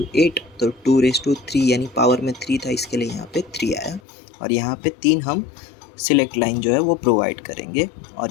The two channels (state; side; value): drops out; right; at 4.0 s